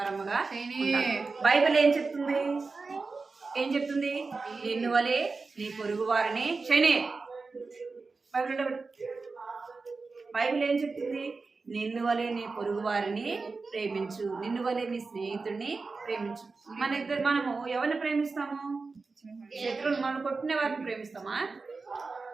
ఉండాలి. బైబిల్ ఏం చెప్తుంది? నిన్ను వలే నీ పొరుగు వారిని బైబిల్ ఏం చెప్తుంది? నిన్ను వలే నీ పొరుగు వారిని ప్రేమించు, నిన్ను వలే నీ స్నేహితుడిని ప్రేమించు. మనము ఎవరిని ప్రేమిస్తాము? శత్రువులు మనం కొట్టిన వారిని ప్రేమిస్తామా?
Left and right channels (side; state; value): left; quieter; 4.1 dB